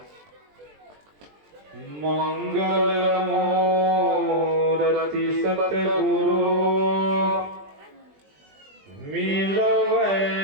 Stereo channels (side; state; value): left; late; 20 ms